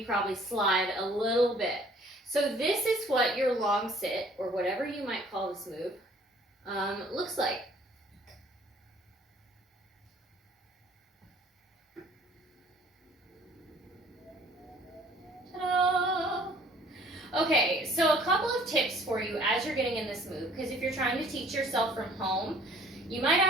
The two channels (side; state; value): both; normal; correlation 0.55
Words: probably slide a little bit. So this is what your long sit, or whatever you might call this move, looks like. Ta-da! Okay, so a couple of tips for you as you're getting in this move, because if you're trying to teach yourself from home, you might